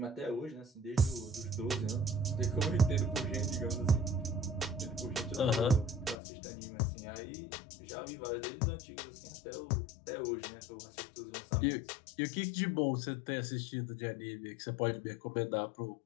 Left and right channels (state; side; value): drops out; right; at 6.2 s